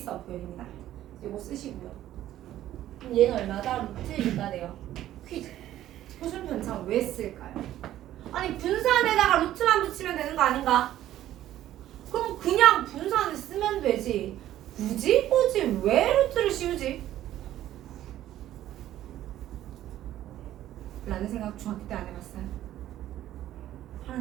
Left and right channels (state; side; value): quieter; left; 13.0 dB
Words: 표현입니다. 이거 쓰시고요. 그럼 얘는 얼마다? 루트 2가 돼요. 퀴즈. 표준 편차 왜 쓸까요? 아니 분산에다가 루트만 붙이면 되는 거 아닌가? 그럼 그냥 분산을 쓰면 되지. 굳이 왜 루트를 씌우지? 라는 생각 중학교 때 안 해봤어요.